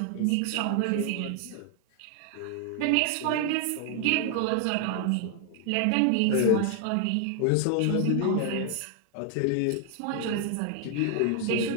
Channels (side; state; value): both; different; correlation 0.00